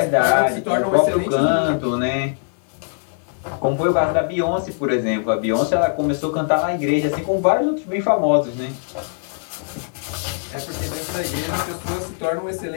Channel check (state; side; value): silent; right; digital silence